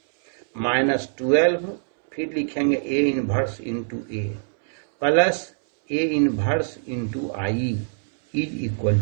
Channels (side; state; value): left; silent; 63 dB below the other